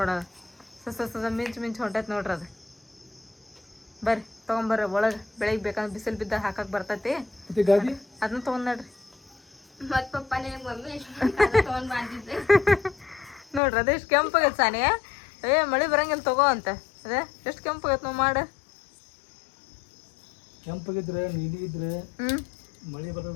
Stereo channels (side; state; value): right; drops out; at 13.6 s